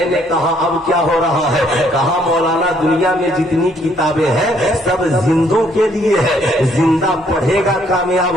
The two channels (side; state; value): both; normal; correlation 0.67